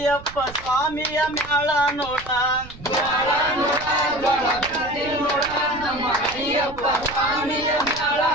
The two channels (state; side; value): noise; right; rumble, 16 dB below the sound